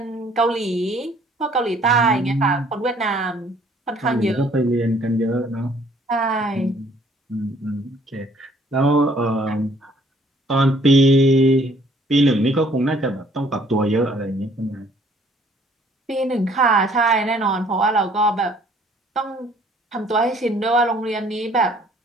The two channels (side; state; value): both; normal; correlation 0.60